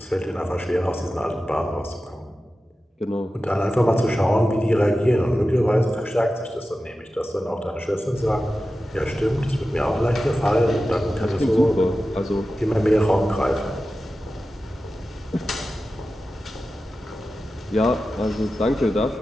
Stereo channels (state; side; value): normal; both; correlation 0.93